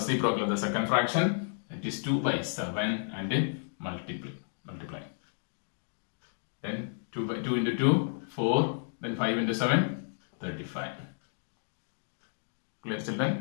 of the second fraction. That is 2 by 7 and multiply. Then 2 into 2, 4. Then 5 into 7, 35. Clear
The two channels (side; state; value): right; silent; digital silence